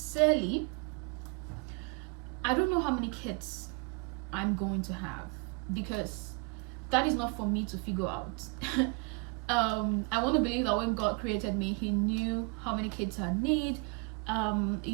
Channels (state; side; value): quieter; left; 30.8 dB